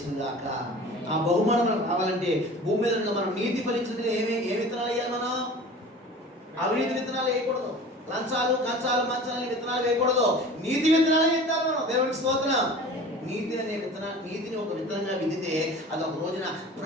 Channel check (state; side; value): normal; both; correlation 0.40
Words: కాక. ఆ బహుమానం మనకు కావాలంటే భూమి మీద మనం నీతి ఫలించడానికి ఏ విత్తనాలు వేయాలి? మనం అవినీతి విత్తనాలు వేయకూడదు, లంచాలు కంచాలు మంచాలు విత్తనాలు వేయకూడదు, నీతి విత్తనాలు వేయాలి మనం. దేవుడికి స్తోత్రం. నీతి అనే నీతిని ఒక విత్తనంగా విదితే అది ఒక రోజున